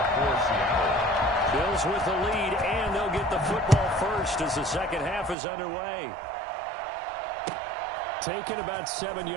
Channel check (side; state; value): left; drops out; at 5.4 s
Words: for Seattle. Bills with the lead, and they'll get the football first as the second half is underway. Taken about 7